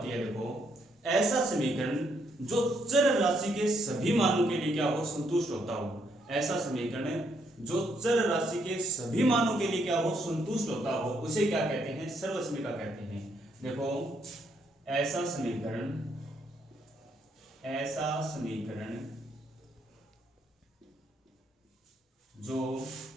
है? देखो ऐसा समीकरण जो चर राशि के सभी मानों के लिए क्या हो? संतुष्ट होता हो। ऐसा समीकरण जो चर राशि के सभी मानों के लिए क्या हो? संतुष्ट होता हो, उसे क्या कहते हैं? सर्वसमीका कहते हैं। देखो ऐसा समीकरण जो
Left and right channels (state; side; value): normal; both; correlation 0.74